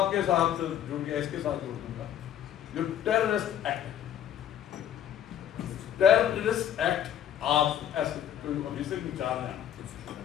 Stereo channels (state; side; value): quieter; right; 10.2 dB